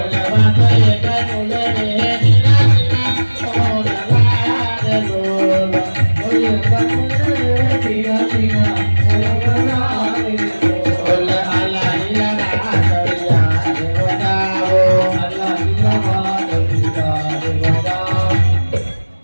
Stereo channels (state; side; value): inverted; both; correlation -1.00